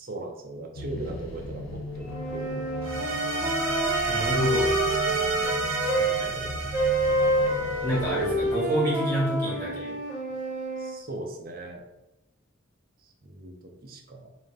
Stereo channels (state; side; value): normal; both; correlation 0.32